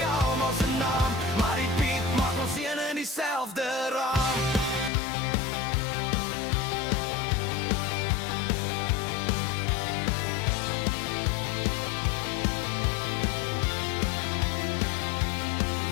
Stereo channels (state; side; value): drops out; right; at 4.9 s